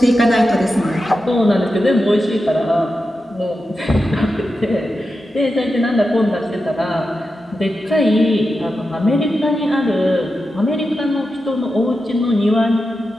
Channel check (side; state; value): both; normal; correlation 0.90